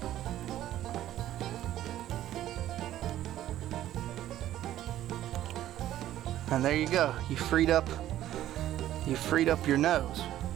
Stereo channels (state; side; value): quieter; left; 13.0 dB